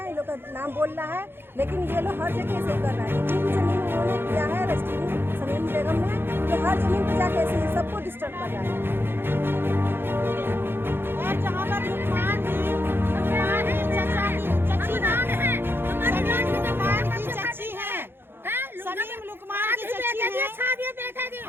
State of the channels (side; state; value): left; late; 0.10 ms